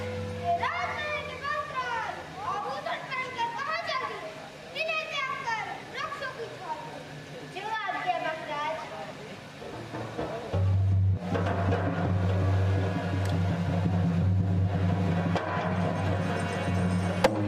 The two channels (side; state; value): both; identical; correlation 1.00